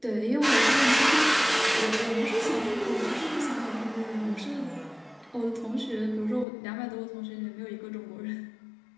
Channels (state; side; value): drops out; right; at 6.5 s